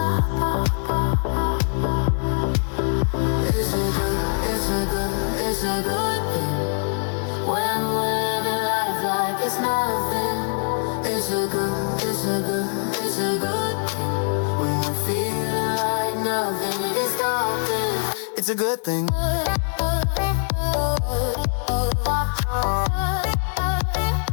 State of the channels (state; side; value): silent; right; digital silence